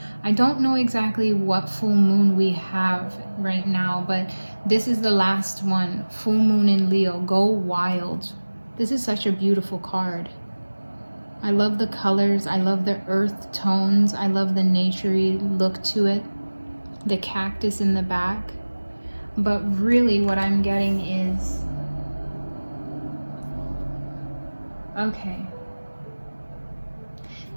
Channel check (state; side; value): inverted; both; correlation -1.00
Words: I don't know exactly what full moon we have right now, but this is the last one. Full moon in Leo. Go wild. This is such a beautiful card. I love the colors. I love the earth tones. I love the naturey look to it. The cactus in the back. But really what I'm getting is, okay,